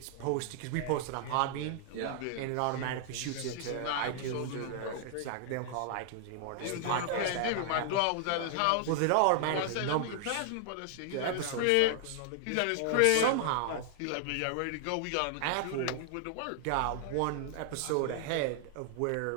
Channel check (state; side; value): different; both; correlation 0.00